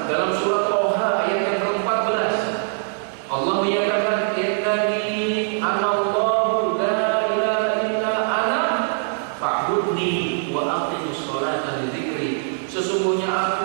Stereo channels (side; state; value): left; silent; 64 dB below the other